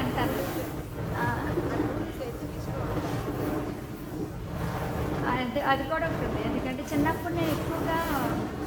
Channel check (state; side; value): identical; both; correlation 1.00